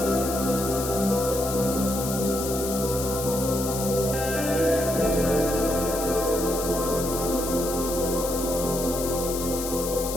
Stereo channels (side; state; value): left; noise; hiss, 6 dB below the sound